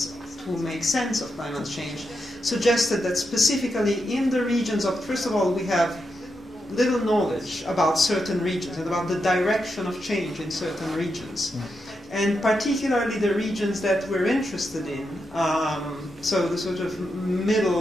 to make sense of climate change suggested that specifically in the regions of, first of all, we have little knowledge about certain regions and about the direction of change in certain regions. And particularly the regions that we're interested in, so the sort of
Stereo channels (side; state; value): both; normal; correlation 0.85